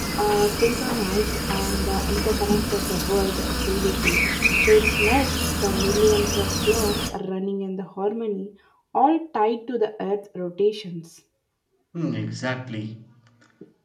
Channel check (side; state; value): both; identical; correlation 1.00